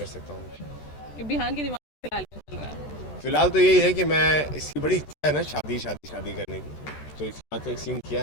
सकता हूँ? कि बिहान के दिमाग में फिलहाल क्या चल रहा है? फिलहाल तो यही है कि मैं, इसकी बड़ी इच्छा है ना शादी शादी शादी करने की, तो इसके बाद एक सीन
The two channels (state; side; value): late; right; 13 ms